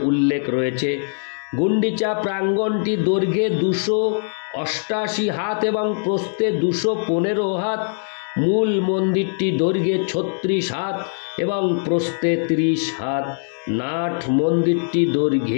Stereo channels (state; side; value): silent; right; digital silence